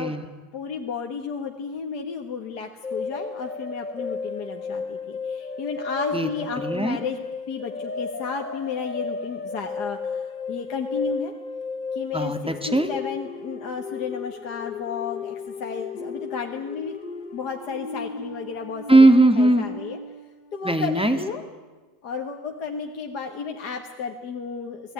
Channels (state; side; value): normal; both; correlation 0.64